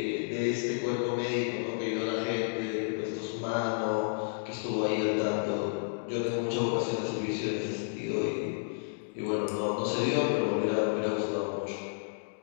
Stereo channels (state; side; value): silent; right; digital silence